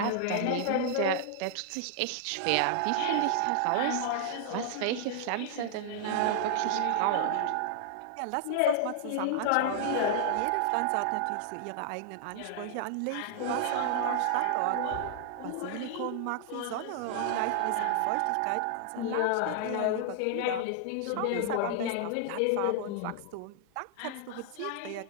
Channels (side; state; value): both; different; correlation -0.01